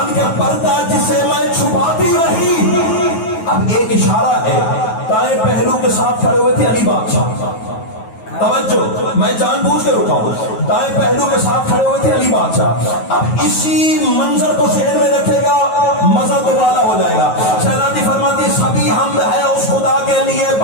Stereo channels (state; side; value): late; right; 9.3 ms